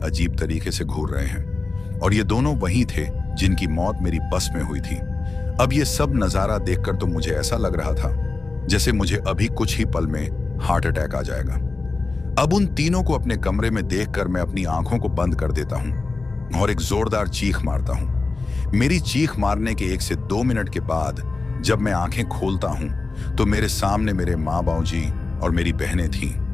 अजीब तरीके से घूर रहे हैं, और ये दोनों वही थे जिनकी मौत मेरी बस में हुई थी। अब ये सब नजारा देखकर तो मुझे ऐसा लग रहा था जैसे मुझे अभी कुछ ही पल में हार्ट अटैक आ जाएगा। अब उन तीनों को अपने कमरे में देखकर मैं अपनी आंखों को बंद कर देता हूं और एक जोरदार चीख मारता हूं। मेरी चीख मारने के 1 से 2 मिनट के बाद जब मैं आंखें खोलता हूं तो मेरे सामने मेरे माँ बाबूजी और मेरी बहनें थीं।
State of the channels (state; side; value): quieter; right; 3.7 dB